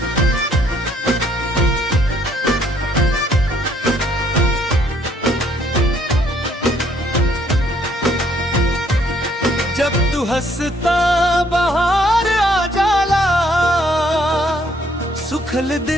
जब तू हंसता बाहर आ जाला, सुखल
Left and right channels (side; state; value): both; normal; correlation 0.66